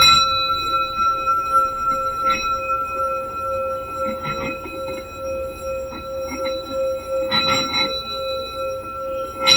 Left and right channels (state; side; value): identical; both; correlation 1.00